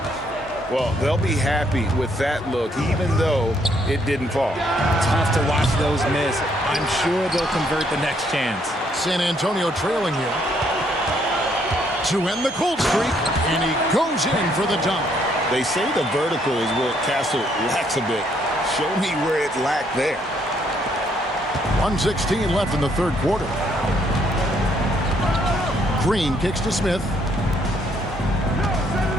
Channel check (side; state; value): both; normal; correlation 0.70